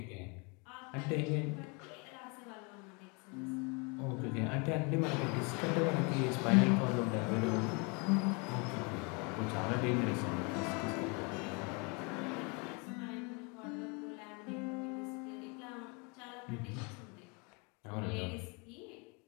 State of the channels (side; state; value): right; quieter; 31.8 dB